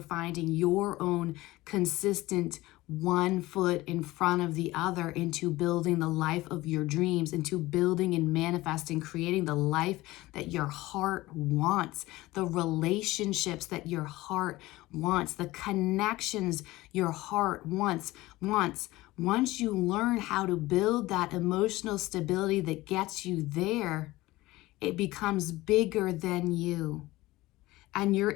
finding your own consistent one foot in front of the other into building the life of your dreams, into building and manifesting, creating the life that your heart wants, the relationships that your heart wants, the connections your heart wants. Once you learn how to build that emotional stability that gets you there, it becomes bigger than you. And you're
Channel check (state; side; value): quieter; right; 18.7 dB